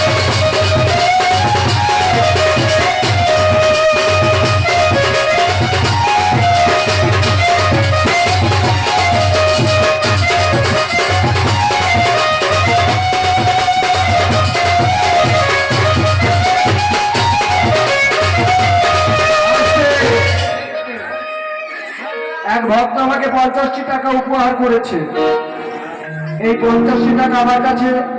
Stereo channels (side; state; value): both; identical; correlation 1.00